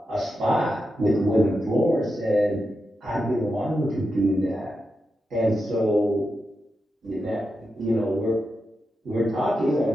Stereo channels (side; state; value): both; normal; correlation 0.88